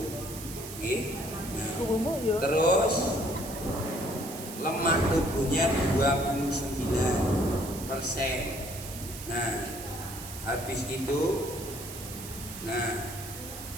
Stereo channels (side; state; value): right; noise; hiss, 11 dB below the sound